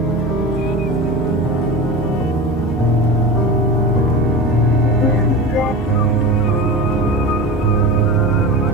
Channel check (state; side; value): normal; both; correlation 0.29